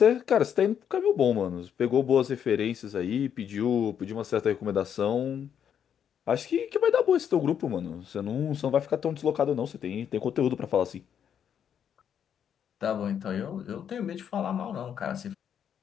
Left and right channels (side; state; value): right; quieter; 8.6 dB